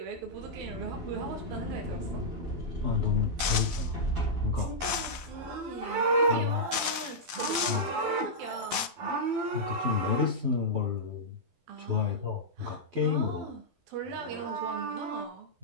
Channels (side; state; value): left; late; 12 ms